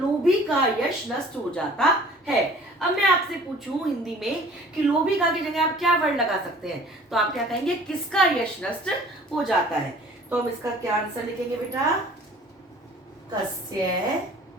का यश नष्ट हो जाता है। अब मैं आपसे पूछूं हिंदी में कि लोभी का की जगह आप क्या वर्ड लगा सकते हैं? तो आप क्या कहेंगे? किसका यश नष्ट हो जाता है? तो हम इसका क्या आंसर लिखेंगे बेटा? कस्य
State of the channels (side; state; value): both; normal; correlation 0.50